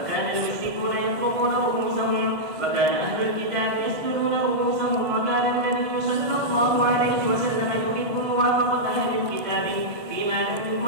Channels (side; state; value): left; late; 1.5 ms